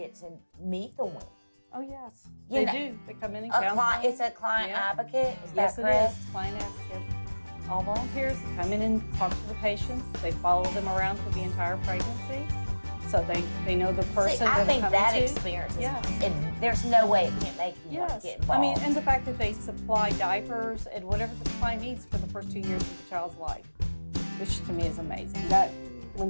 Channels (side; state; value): both; inverted; correlation -1.00